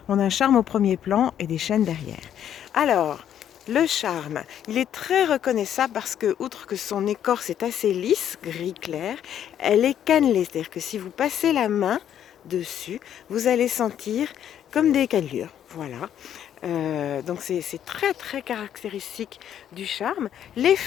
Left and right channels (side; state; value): right; quieter; 10.0 dB